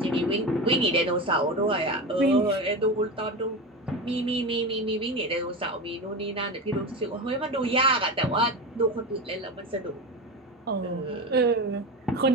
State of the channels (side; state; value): both; normal; correlation 0.23